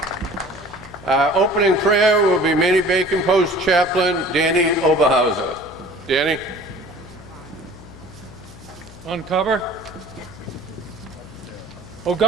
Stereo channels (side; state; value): left; noise; hum, 19 dB below the sound